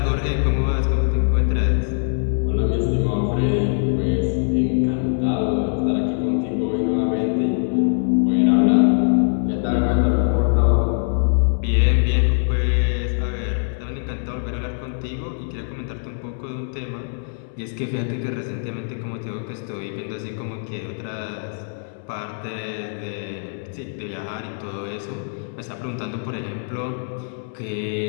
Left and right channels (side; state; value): right; silent; 64 dB below the other